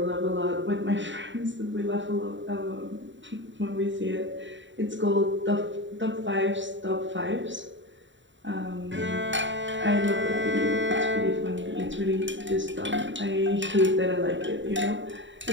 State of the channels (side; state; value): left; late; 0.54 ms